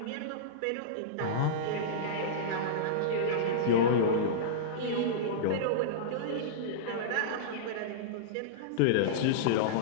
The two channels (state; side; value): different; both; correlation -0.04